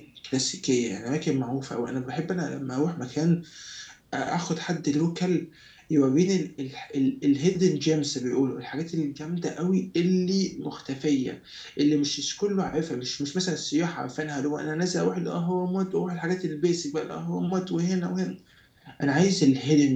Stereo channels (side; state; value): both; identical; correlation 1.00